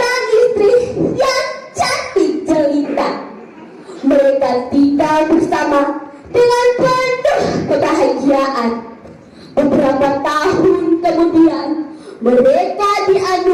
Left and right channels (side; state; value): both; identical; correlation 1.00